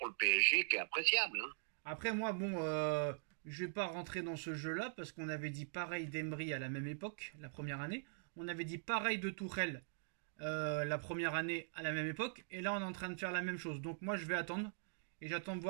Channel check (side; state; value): left; silent; digital silence